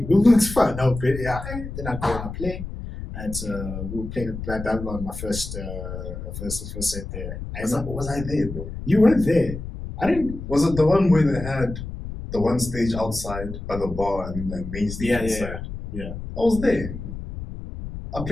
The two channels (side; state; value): left; noise; rumble, 8 dB below the sound